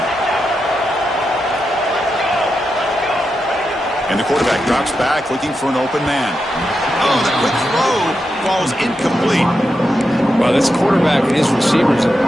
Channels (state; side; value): normal; both; correlation 0.87